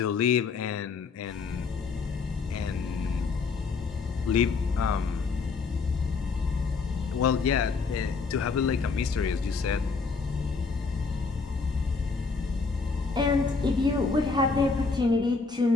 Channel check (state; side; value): quieter; right; 4.6 dB